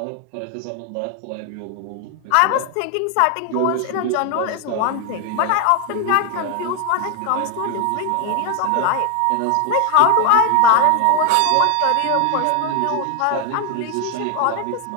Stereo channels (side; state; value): both; different; correlation 0.01